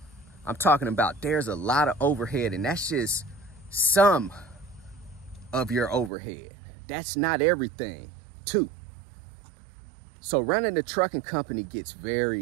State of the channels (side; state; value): left; drops out; at 6.1 s